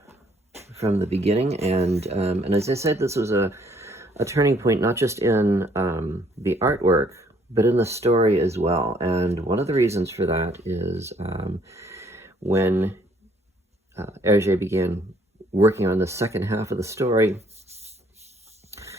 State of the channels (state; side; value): normal; both; correlation 0.64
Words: from the beginning. And as I said, this was a turning point, not just in the artwork, but in the story as well. And one of the reasons for that is when Hergé began working on the second half of the story,